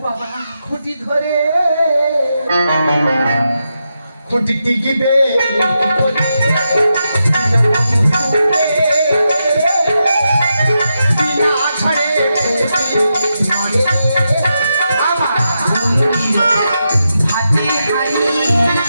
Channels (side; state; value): both; inverted; correlation -0.86